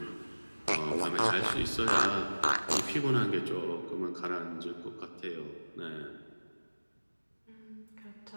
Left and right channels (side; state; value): both; inverted; correlation -1.00